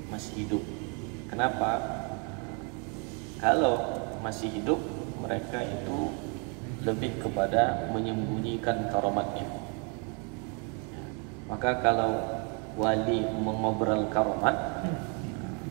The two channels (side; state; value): left; quieter; 35.8 dB